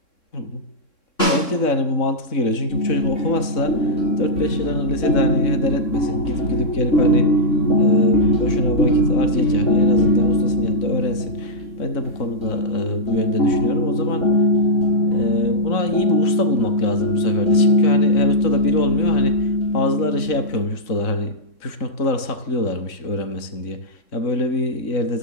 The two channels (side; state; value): right; late; 3.6 ms